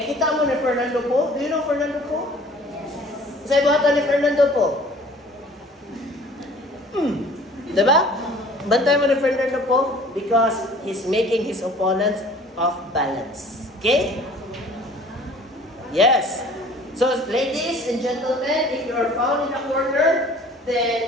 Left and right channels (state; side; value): normal; both; correlation 0.49